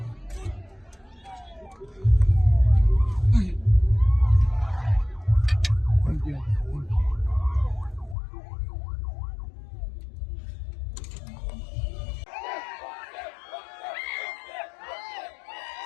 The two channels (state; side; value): drops out; right; at 8.2 s